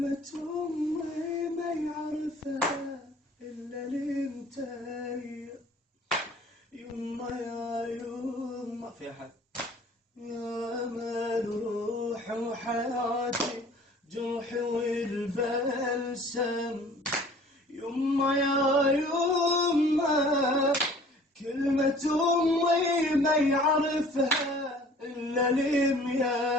أمي ما يعرفها إلا انتي. يما يا يما في أحد يا أمل روحي وحياتي، جرحي والبلسم. يما يا يما كلمة أمي ما يعرفها إلا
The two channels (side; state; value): both; normal; correlation 0.50